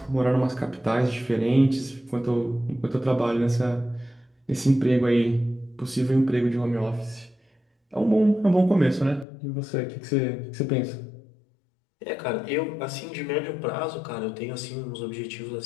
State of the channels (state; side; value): drops out; right; at 9.2 s